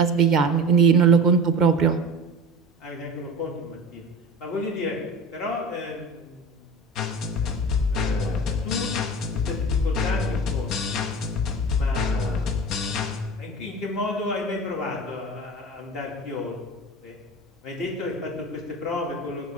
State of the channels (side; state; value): both; normal; correlation 0.33